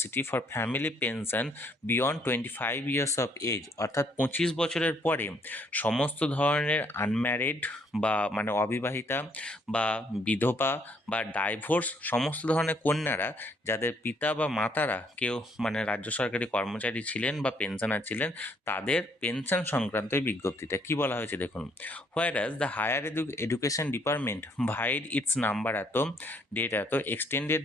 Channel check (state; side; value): normal; both; correlation 0.67